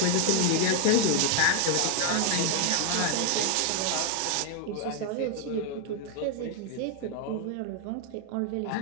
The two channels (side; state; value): both; different; correlation 0.00